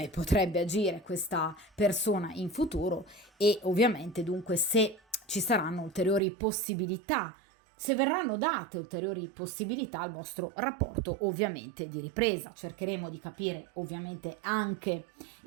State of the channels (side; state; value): left; drops out; at 6.2 s